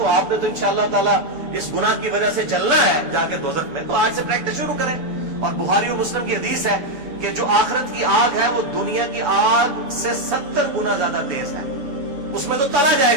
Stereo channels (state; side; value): late; left; 7.0 ms